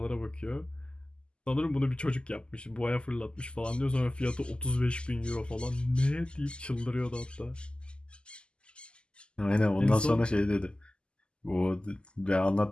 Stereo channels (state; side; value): late; right; 0.050 ms